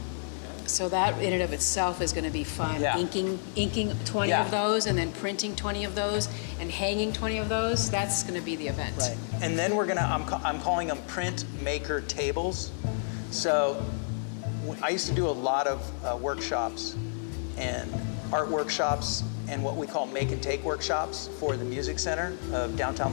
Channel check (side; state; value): right; silent; digital silence